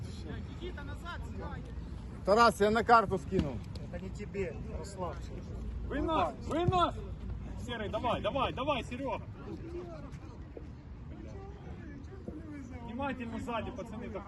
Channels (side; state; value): both; identical; correlation 1.00